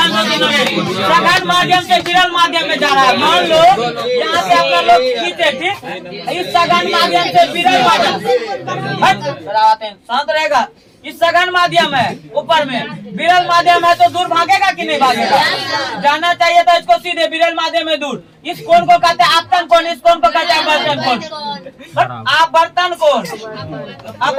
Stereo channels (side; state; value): both; identical; correlation 1.00